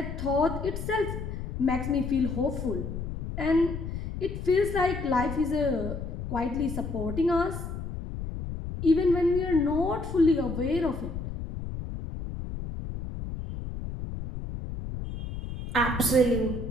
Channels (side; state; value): left; noise; rumble, 6 dB below the sound